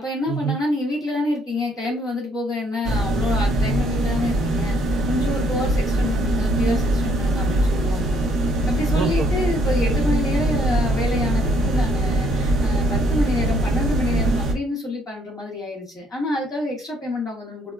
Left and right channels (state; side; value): normal; both; correlation 0.67